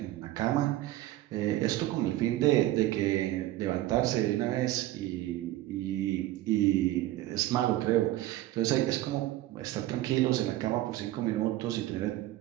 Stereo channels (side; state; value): left; quieter; 15.5 dB